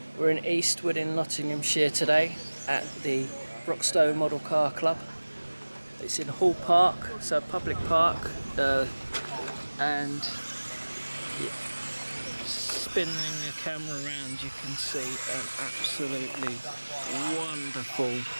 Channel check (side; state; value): both; inverted; correlation -1.00